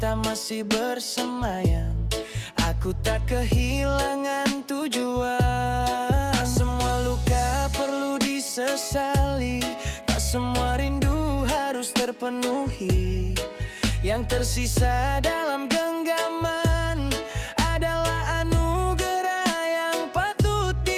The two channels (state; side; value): identical; both; correlation 1.00